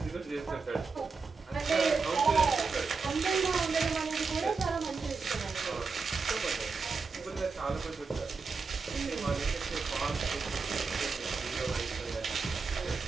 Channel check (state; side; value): quieter; left; 4.7 dB